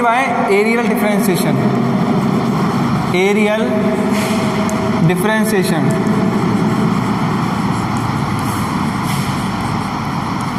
by areal differentiation, areal differentiation,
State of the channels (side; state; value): both; identical; correlation 1.00